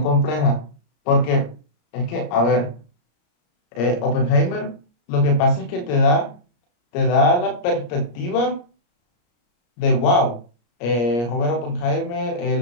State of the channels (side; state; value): right; late; 34 ms